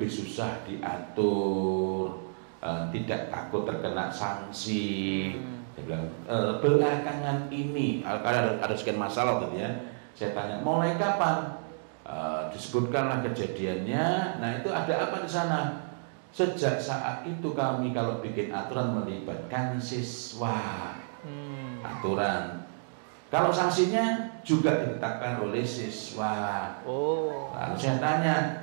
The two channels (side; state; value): left; silent; digital silence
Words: susah diatur, tidak takut terkena sanksi. Saya bilang belakangan ini ada sekian masalah gitu ya. Saya tanya mulai kapan? Disebutkanlah kejadiannya. Nah itu ada apa di sana? Sejak saat itu kami kalau bikin aturan melibatkan siswa. Aturan. Kalau sanksinya juga ditetapkan oleh siswa. Lalu saya